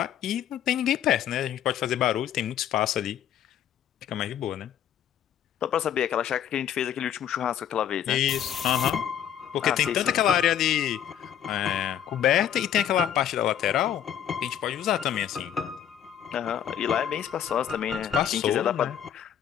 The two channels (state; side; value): quieter; right; 9.9 dB